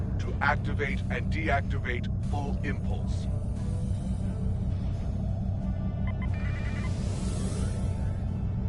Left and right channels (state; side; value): identical; both; correlation 1.00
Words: to activate and deactivate full impulse.